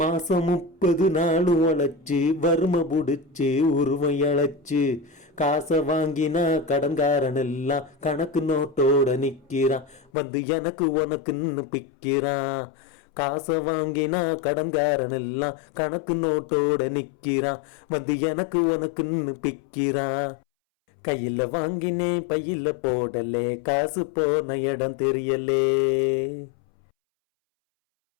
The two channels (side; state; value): right; drops out; at 10.1 s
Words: 30 நாள் உழைச்சு வறுமை புடிச்சு உருவம் இழைச்சு காசை வாங்கினா கடன்காரன் எல்லாம் கணக்கு நோட்டோட நிற்கிறான். வந்து எனக்கு உனக்குன்னு பிக்கிறான். காசை வாங்கினா கடன்காரன் எல்லாம் கணக்கு நோட்டோட நிற்கிறான். வந்து எனக்கு உனக்குன்னு பிக்கிறான். கையில் வாங்கினேன் பையில் போடலே காசு போன இடம் தெரியலே.